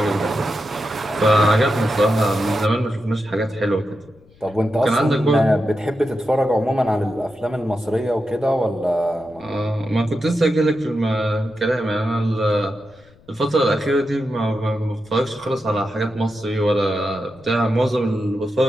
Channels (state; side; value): noise; left; rumble, 28 dB below the sound